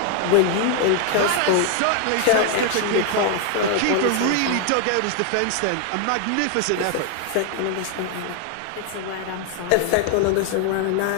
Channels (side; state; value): both; different; correlation 0.00